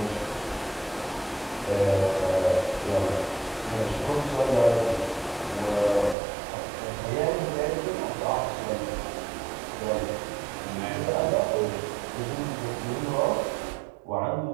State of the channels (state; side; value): drops out; left; at 6.2 s